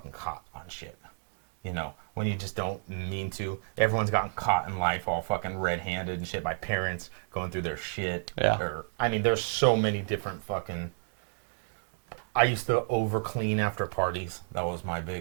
caught on shit. When you just don't mean to. Everyone's gotten caught in life all fucking red-handed and shit by parents going through their shit. Yeah. There's so many different fucking... I used to over-clean after parties. That was my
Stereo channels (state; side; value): silent; left; 57 dB below the other